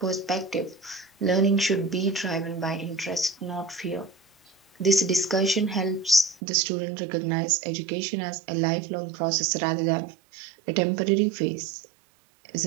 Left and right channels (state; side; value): drops out; left; at 6.4 s